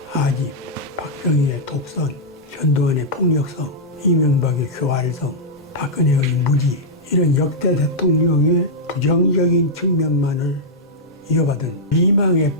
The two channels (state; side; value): normal; both; correlation -0.07